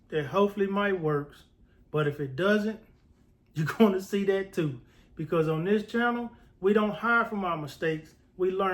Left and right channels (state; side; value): identical; both; correlation 1.00